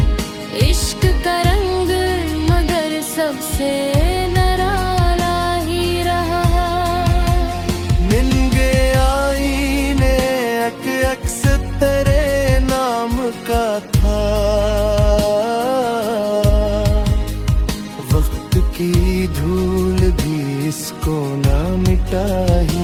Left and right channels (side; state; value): both; identical; correlation 1.00